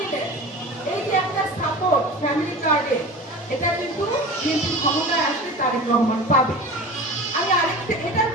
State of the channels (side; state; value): both; normal; correlation 0.35